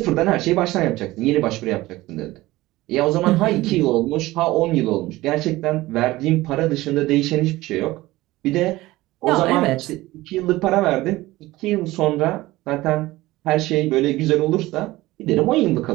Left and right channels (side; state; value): left; quieter; 18.3 dB